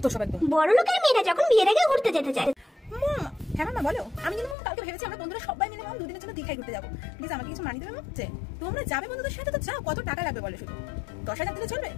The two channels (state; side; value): drops out; right; at 4.5 s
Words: সব একদম। বড় লোকের মেয়েরা যখন বিয়ের আগে ঘুরতে যেতে চায়। হ্যাঁ মামা বলো। আমি কিন্তু কালকে ভেবেছি আমরা বন্ধুরা সবাই মিলে দুদিনের জন্য দীঘায় ঘুরতে যাবো। প্লিজ আমাকে কিছু মানিয়ে দেবে হচ্ছে? তোমরা যাবে বন্ধুদের সাথে তো যাও, কত টাকা লাগবে বলো? শুধু 10,000 দিলে চলবে?